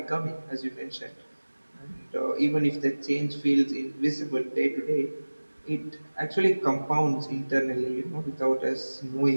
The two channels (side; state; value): both; inverted; correlation -1.00